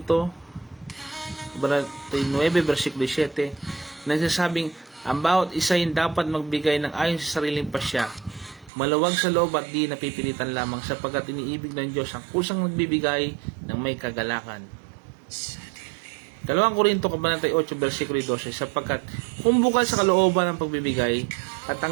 9 versikulo 7, nagsasabing ang bawat isa ay dapat magbigay ng ayon sa sariling pasya, maluwag sa loob at di napipilitan lamang, sapagkat iniibig ng Diyos ang kusang nagbibigay ng may kagalakan. Ikalawang Korinto 8 versikulo 12, sapagkat kung bukal sa kalooban ng pagbibigay at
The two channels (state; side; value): drops out; left; at 8.7 s